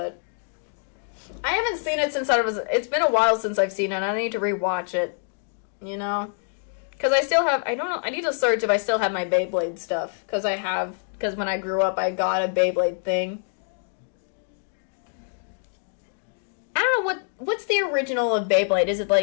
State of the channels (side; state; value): right; silent; 61 dB below the other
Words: I haven't seen it since it's been a while since I've seen it. I need to rewatch it, you know? Because I don't know, I need to search if I still have my Beyblade stuff. Because when I grew up, I got a Beyblade thing. I don't know, what's the original of Beyblade? Is it